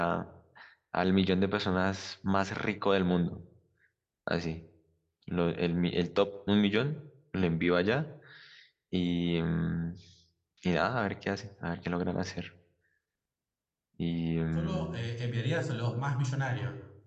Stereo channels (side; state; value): both; identical; correlation 1.00